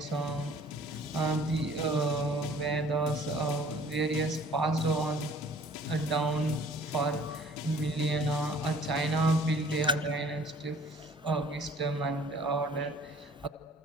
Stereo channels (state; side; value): normal; both; correlation 0.53